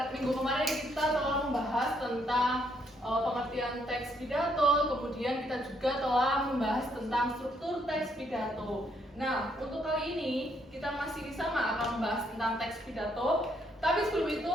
minggu kemarin kita telah membahas tentang pengertian teks pidato, kemudian kita juga telah membahas tentang struktur teks pidato. Nah, untuk kali ini kita masih sama akan membahas tentang teks pidato, tapi sebelum itu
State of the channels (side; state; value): both; normal; correlation 0.72